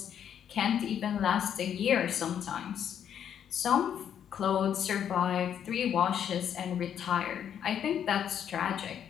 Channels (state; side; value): quieter; right; 9.0 dB